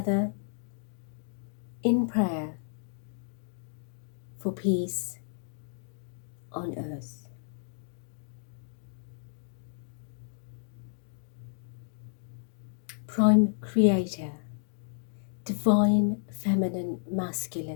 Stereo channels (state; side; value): silent; right; digital silence